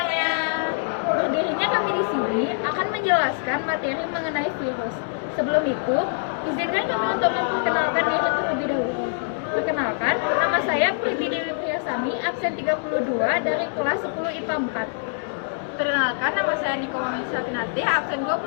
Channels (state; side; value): silent; right; digital silence